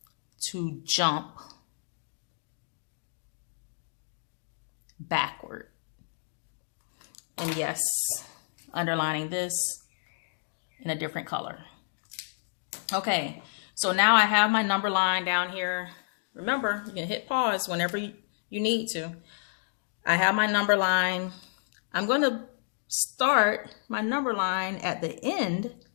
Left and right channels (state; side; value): silent; right; digital silence